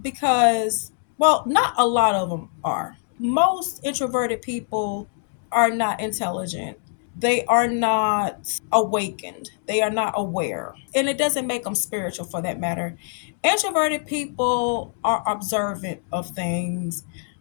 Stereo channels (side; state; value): right; silent; 63 dB below the other